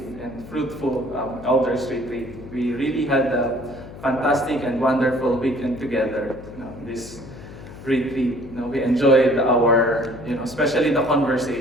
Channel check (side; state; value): left; noise; hum, 15 dB below the sound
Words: and fruitful Elders Retreat. We really had a fantastic and wonderful weekend together. This retreat, we enjoyed our, especially the